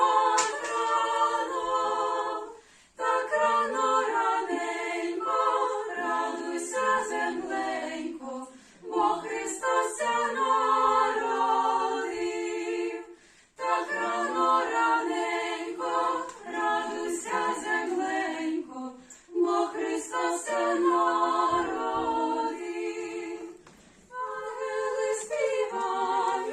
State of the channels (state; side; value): identical; both; correlation 1.00